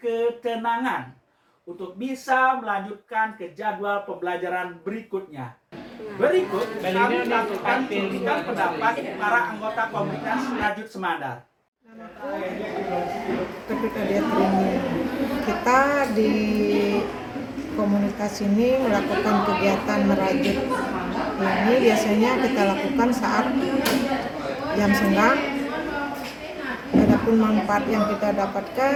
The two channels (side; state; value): both; identical; correlation 1.00